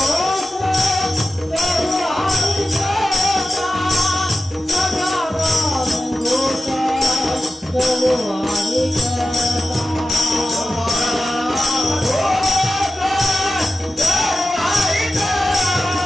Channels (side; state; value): both; normal; correlation 0.93